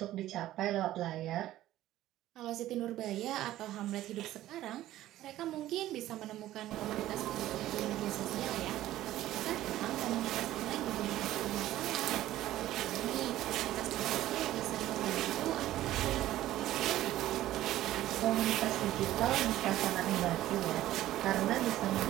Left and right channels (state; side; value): quieter; left; 14.3 dB